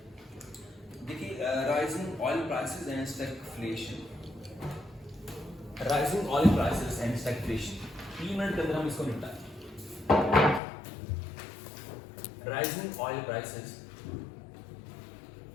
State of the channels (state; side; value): drops out; right; at 10.6 s